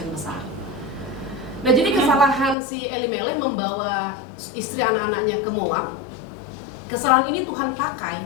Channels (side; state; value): right; drops out; at 2.6 s